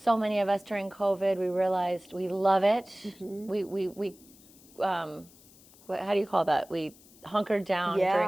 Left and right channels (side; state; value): left; noise; hiss, 25 dB below the sound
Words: many of us during COVID, we realized we love it. Mhm. We how do you call that? We hunkered down during